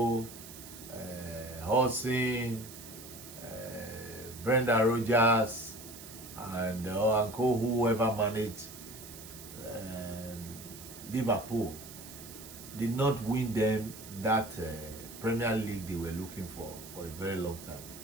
Hodgson, Brendan Rodgers, and co, whoever managed Liverpool, did not win them that Premier League they were looking for a very long time.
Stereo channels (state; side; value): noise; right; hiss, 15 dB below the sound